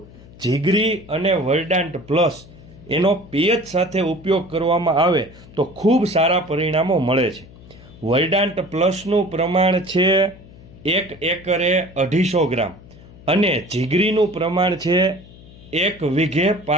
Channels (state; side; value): noise; left; hum, 21 dB below the sound